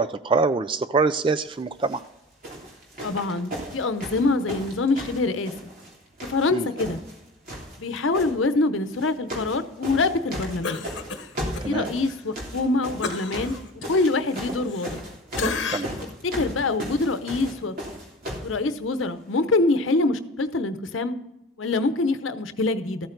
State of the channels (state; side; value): normal; both; correlation 0.36